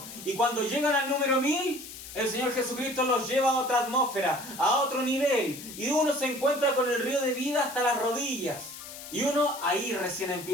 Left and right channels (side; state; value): left; noise; hiss, 13 dB below the sound